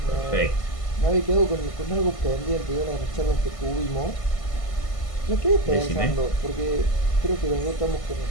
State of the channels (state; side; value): late; right; 1.5 ms